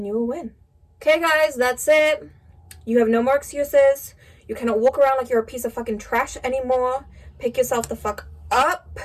you will win. Okay guys, that's it. You have no more excuses. You cannot walk around like you're a piece of fucking trash anymore. Pick yourself the fuck up.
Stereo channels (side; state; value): both; identical; correlation 1.00